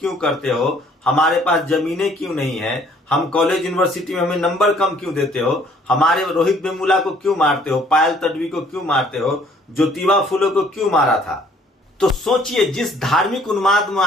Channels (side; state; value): both; normal; correlation 0.60